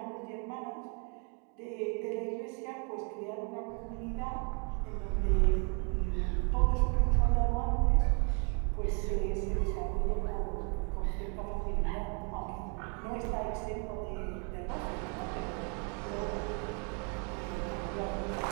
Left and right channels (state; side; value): quieter; left; 38.4 dB